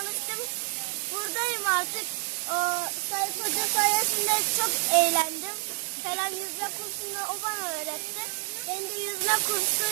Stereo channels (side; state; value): left; silent; digital silence